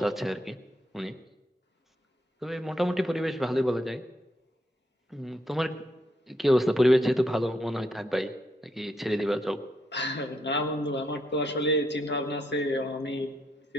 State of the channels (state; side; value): normal; both; correlation 0.77